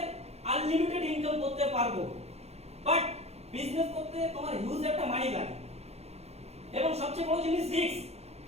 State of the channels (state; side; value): late; left; 0.31 ms